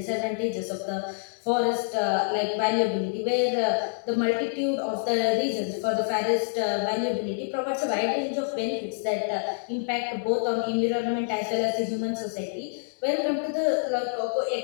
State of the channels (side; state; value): right; silent; digital silence